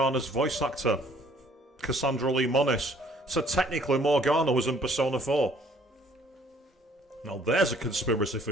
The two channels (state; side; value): normal; both; correlation 0.59